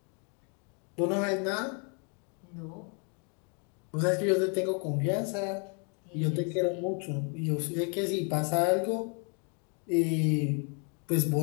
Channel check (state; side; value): quieter; right; 37.9 dB